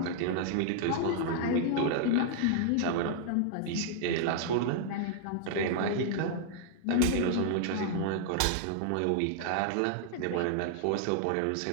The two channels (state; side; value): different; both; correlation -0.01